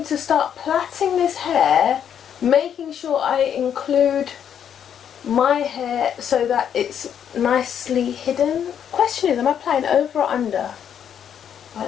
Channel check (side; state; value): right; quieter; 8.8 dB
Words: to start plaiting this hair, making sure I include my hair so that it's nicely hidden. Question is, am I plaiting over or under?